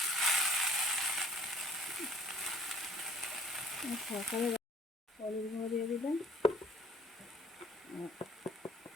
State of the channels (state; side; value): normal; both; correlation 0.54